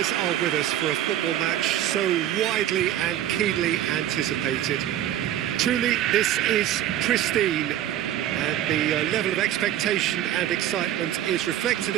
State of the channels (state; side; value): quieter; left; 11.8 dB